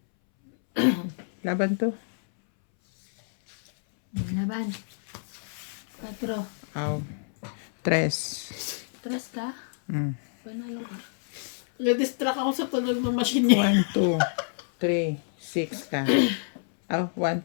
Laban to. Laban. 4. Aw. 3. 3 ka? Panalo ka. Na-distract ako sa tunog ng machine niya. 1, 2, 3, 6 ka. 1, 2,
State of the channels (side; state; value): right; silent; 60 dB below the other